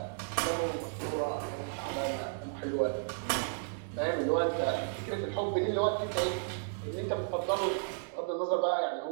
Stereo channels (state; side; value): silent; left; digital silence